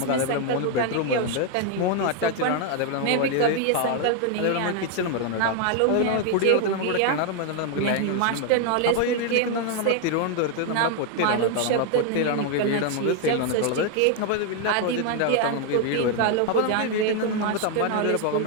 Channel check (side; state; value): both; different; correlation 0.00